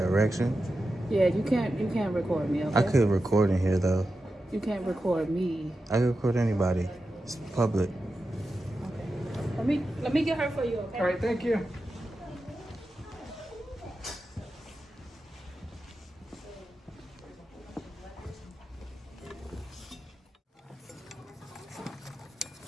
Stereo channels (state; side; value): normal; both; correlation 0.91